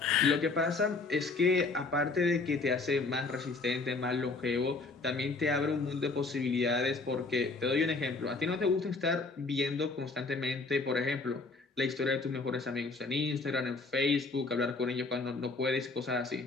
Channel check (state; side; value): quieter; right; 3.8 dB